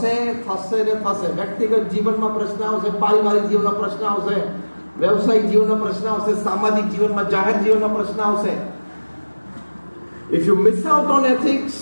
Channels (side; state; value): both; inverted; correlation -1.00